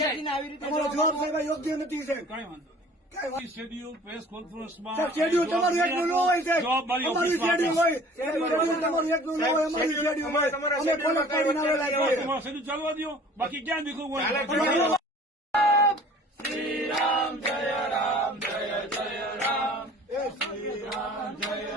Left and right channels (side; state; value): both; normal; correlation 0.48